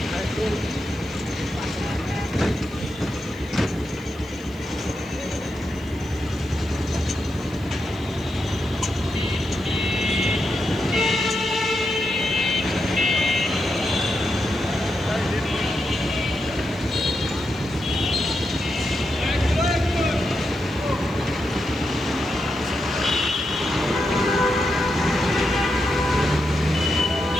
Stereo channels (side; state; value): right; noise; hiss, 27 dB below the sound